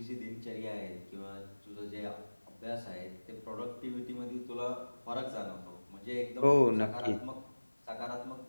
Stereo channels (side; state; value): both; inverted; correlation -1.00